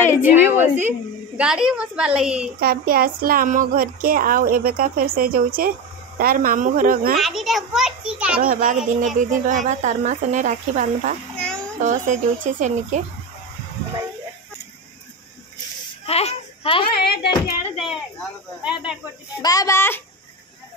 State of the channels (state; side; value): normal; both; correlation 0.20